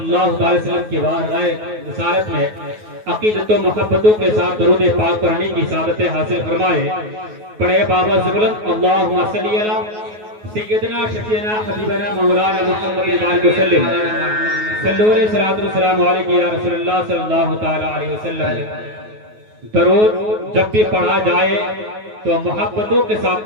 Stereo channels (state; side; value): late; left; 9.4 ms